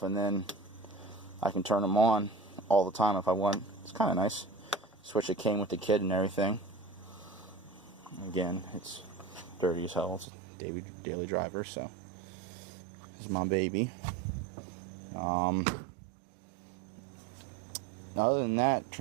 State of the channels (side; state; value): left; drops out; at 10.2 s